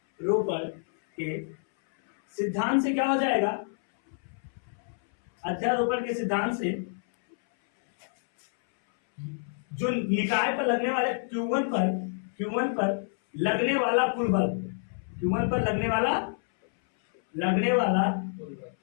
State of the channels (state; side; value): silent; right; 59 dB below the other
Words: के सिद्धांत से क्या हो जाएगा, अध्यारोपण के सिद्धांत से जो निकाय पर लगने वाले Q1 पर लगने वाला कुल बल, Q1 पर लगने वाला